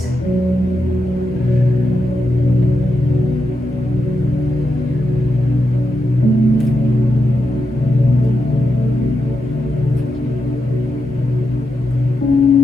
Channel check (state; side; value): normal; both; correlation 0.86